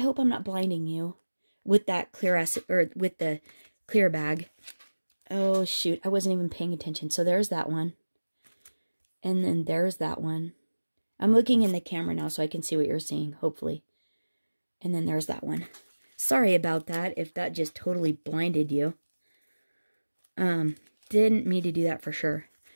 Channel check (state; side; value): inverted; both; correlation -1.00